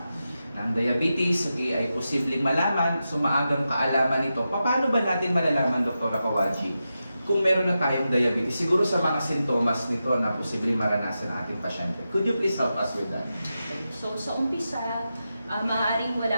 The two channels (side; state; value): both; inverted; correlation -0.90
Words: Ang diabetes, ay posibleng malaman, maagang kaalaman nito. Paano ba natin malalaman, Doktora Kawaji, kung meron na tayong diabetes, siguro sa mga sintomas nito na posibleng maranasan ng ating pasyente? Could you please help us with that? So sa umpisa, maaaring